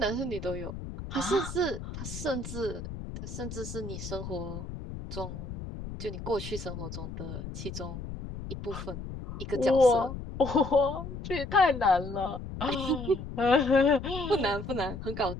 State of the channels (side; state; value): left; noise; rumble, 9 dB below the sound